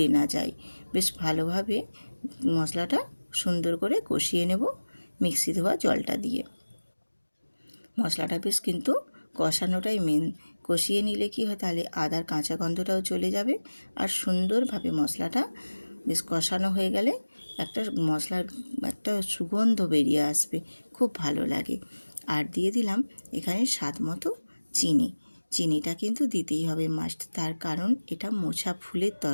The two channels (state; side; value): inverted; both; correlation -1.00